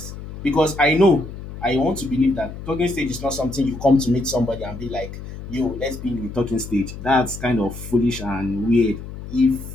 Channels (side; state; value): left; noise; hum, 11 dB below the sound